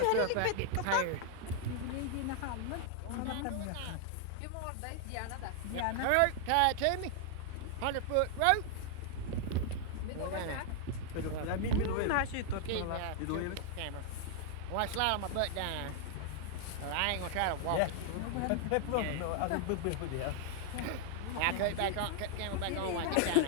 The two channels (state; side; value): different; both; correlation 0.00